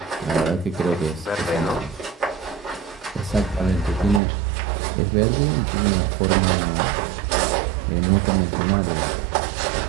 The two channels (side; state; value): left; drops out; at 4.2 s